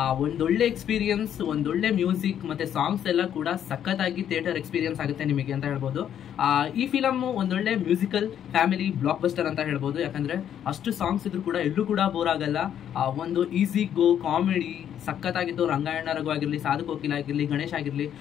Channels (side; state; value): right; quieter; 9.8 dB